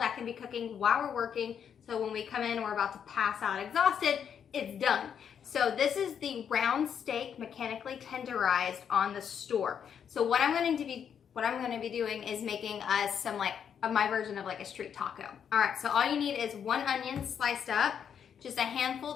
can be cooking while we're working, so when we come in and we're about to pass out exhausted, it's done. So this is the round steak mechanically tenderized on the store. So what I'm going to be doing is making us some my version of like a street taco. All right, so all you need is 1 onion sliced up, just a handful.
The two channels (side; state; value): right; quieter; 8.0 dB